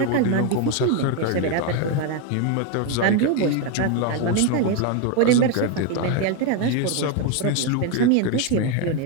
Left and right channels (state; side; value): different; both; correlation 0.02